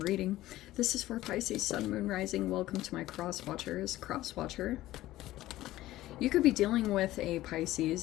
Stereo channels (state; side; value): quieter; right; 15.8 dB